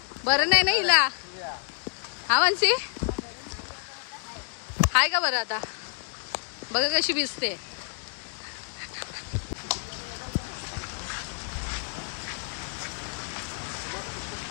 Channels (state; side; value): silent; right; digital silence